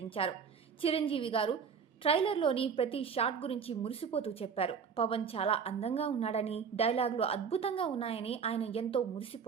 చిరంజీవి గారు ట్రైలర్లోని ప్రతి షాట్ గురించి మురిసిపోతూ చెప్పారు. పవన్ చాలా అందంగా ఉన్నాడని, డైలాగులు అద్భుతంగా ఉన్నాయని ఆయన ఎంతో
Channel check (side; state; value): left; quieter; 6.4 dB